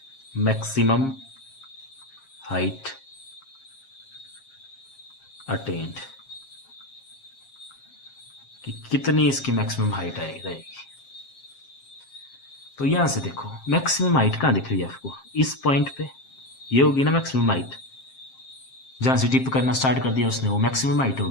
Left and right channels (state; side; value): late; right; 7.5 ms